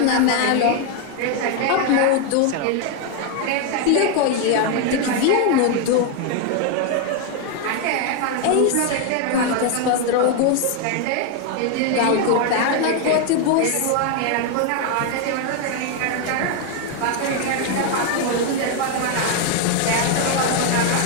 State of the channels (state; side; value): different; both; correlation 0.01